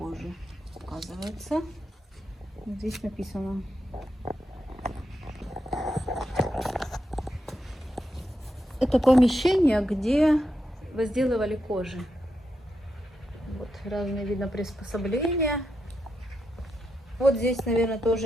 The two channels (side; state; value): both; normal; correlation 0.84